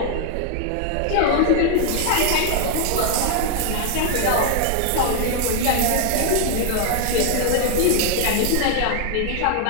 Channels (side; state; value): both; different; correlation 0.00